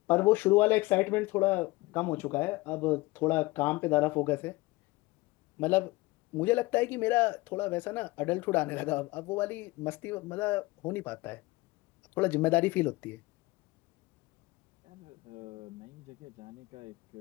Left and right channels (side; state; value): right; quieter; 21.5 dB